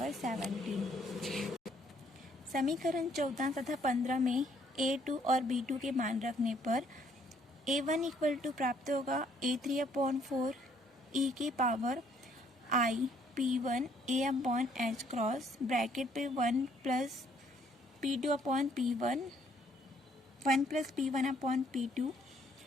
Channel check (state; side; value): normal; both; correlation 0.65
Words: 17। समीकरण 14 तथा 15 में A2 और B2 के मान रखने पर A1 इक्वल टू प्राप्त होगा A3 अपॉन 4 ई की power I P1 A upon h cross bracket पे 1 plus P2 upon P1 1 plus P1 upon P2